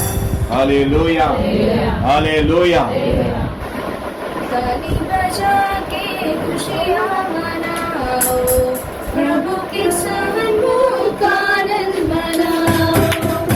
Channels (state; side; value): identical; both; correlation 1.00